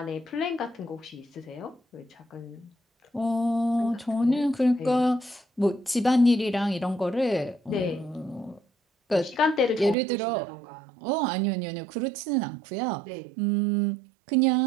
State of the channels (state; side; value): drops out; left; at 10.0 s